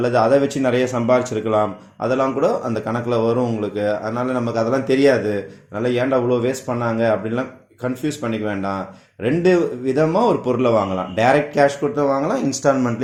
அதை வச்சு நிறைய சம்பாதிச்சிருக்கலாம். அதெல்லாம் கூட அந்த கணக்கில் வரும் உங்களுக்கு. அதனால் நமக்கு அதெல்லாம் தெரியாது. அதனால் ஏன்டா அவ்வளோ வேஸ்ட் பண்ணாங்க அப்படின்லாம் கன்ஃபியூஸ் பண்ணிக்க வேண்டாம். ரெண்டு விதமாக ஒரு பொருளை வாங்கலாம். டைரக்ட் கேஷ் கொடுத்து வாங்கலாம்,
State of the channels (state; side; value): identical; both; correlation 1.00